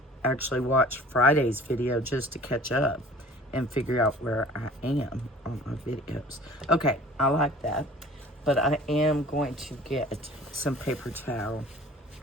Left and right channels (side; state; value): both; normal; correlation 0.46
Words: actually watch Friday's video just to catch up and figure out where I am on my videos. Okay, I like that. But I am going to get some paper towel